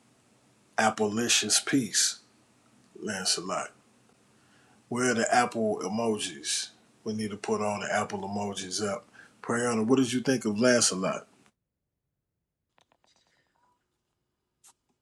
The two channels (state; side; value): identical; both; correlation 1.00